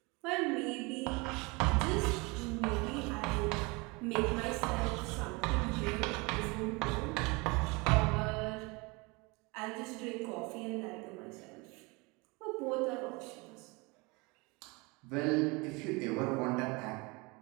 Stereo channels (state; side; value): quieter; left; 26.9 dB